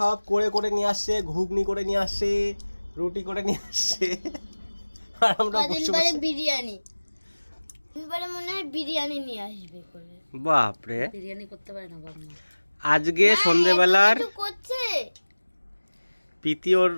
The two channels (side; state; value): both; inverted; correlation -1.00